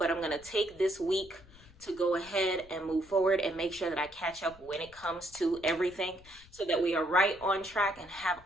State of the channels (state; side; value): noise; left; rumble, 23 dB below the sound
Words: I'm gonna take this week to go ahead and move forward and make sure that I catch up when it comes to everything so that we are right on track and have